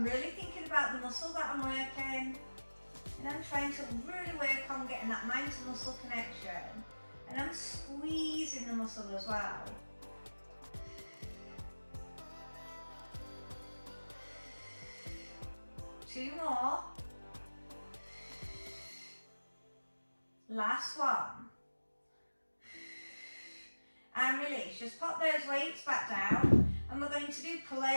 really thinking about the muscle that I'm working, and I'm trying to really work on getting that mind to muscle connection, and I'm squeezing the muscle as well. Two more. Last one. And release. Just pop those weights back down, and we're going to do pull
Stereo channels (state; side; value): inverted; both; correlation -1.00